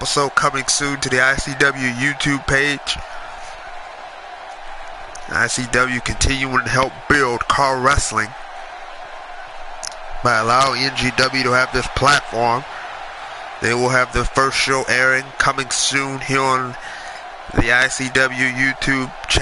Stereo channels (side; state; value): both; identical; correlation 1.00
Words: coming soon to the ICW YouTube page. ICW continuing to help build car wrestling by allowing NGW to have this platform. They will have their first show airing coming soon here on the ICW YouTube